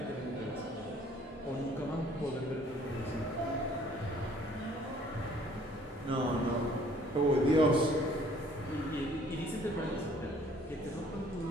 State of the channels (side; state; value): both; normal; correlation 0.57